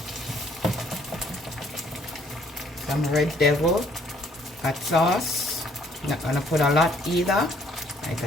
Some Red Devil hot sauce. Not gonna put a lot either, like a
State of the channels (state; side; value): normal; both; correlation 0.63